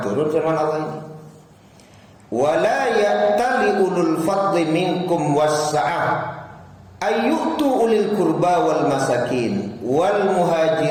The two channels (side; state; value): both; identical; correlation 1.00